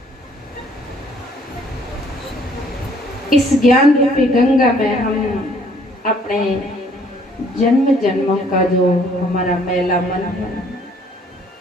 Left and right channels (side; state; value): both; normal; correlation 0.61